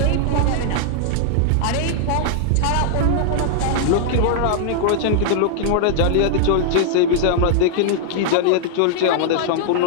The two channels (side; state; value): both; different; correlation -0.01